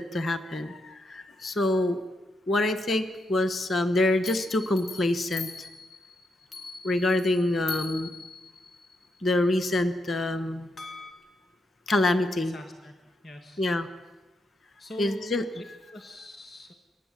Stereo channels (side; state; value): both; normal; correlation 0.81